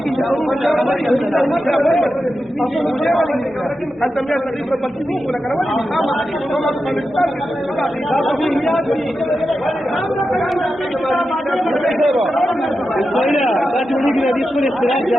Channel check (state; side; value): normal; both; correlation 0.90